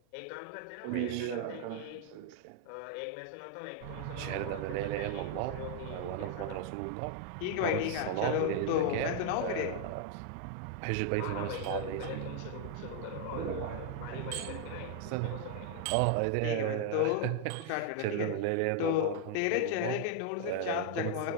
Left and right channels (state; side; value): different; both; correlation 0.00